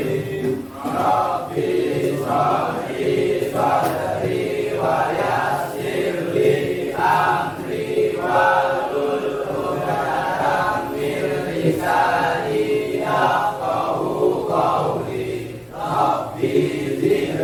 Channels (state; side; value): identical; both; correlation 1.00